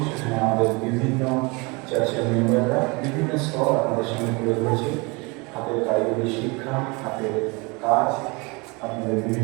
সেখানে আমাদের বিভিন্ন চার্চের মেম্বাররা বিভিন্ন স্তর আপনাদের সামনে তুলে ধরেছে। হাতের কারিগরি শিক্ষা, হাতের কাজ, আপনাদের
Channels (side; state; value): left; quieter; 27.8 dB